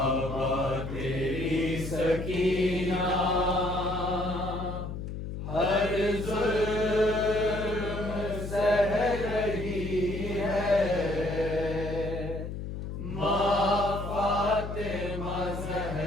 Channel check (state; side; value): noise; left; hum, 6 dB below the sound